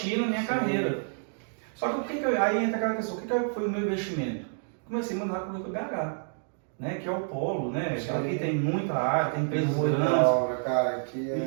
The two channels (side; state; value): left; silent; digital silence